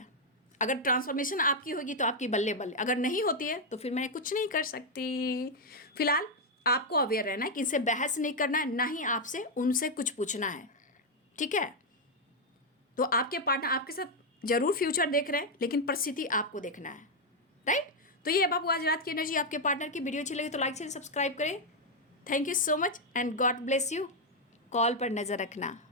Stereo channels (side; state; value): both; normal; correlation 0.01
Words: अगर ट्रांसफॉर्मेशन आपकी होगी तो आपकी बल्ले बल्ले, अगर नहीं होती है तो फिर मैं कुछ नहीं कर सकती। फिलहाल आपको अवेयर रहना है कि इनसे बहस नहीं करना है, ना ही आपसे उनसे कुछ पूछना है, ठीक है। तो आपके पार्टनर आपके साथ जरूर फ्यूचर देख रहे हैं, लेकिन परिस्थिति आपको देखना है, राइट। तो ये है बाबू आज रात की एनर्जी आपके पार्टनर की। वीडियो अच्छी लगी तो लाइक शेयर सब्सक्राइब करें। Thank you so much and God bless you. Call पर नज़र रखना।